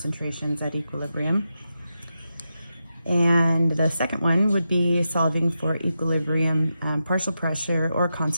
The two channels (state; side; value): inverted; both; correlation -0.88